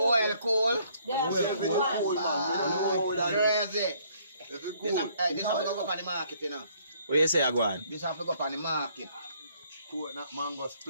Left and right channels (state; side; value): inverted; both; correlation -0.64